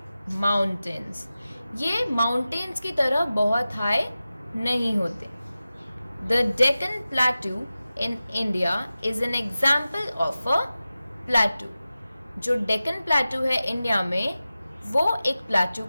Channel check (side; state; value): both; inverted; correlation -0.95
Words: mountains. ये माउंटेन्स की तरह बहुत हाई नहीं होते. The Deccan plateau in India is an example of a plateau. जो डेक्कन प्लेटू है इंडिया में वो एक प्लेटू